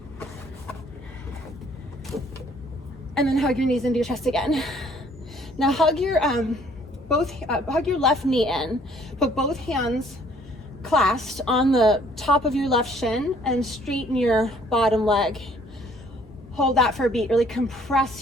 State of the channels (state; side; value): normal; both; correlation 0.60